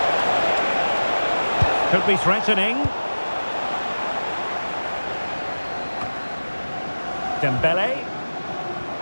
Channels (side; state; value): both; inverted; correlation -1.00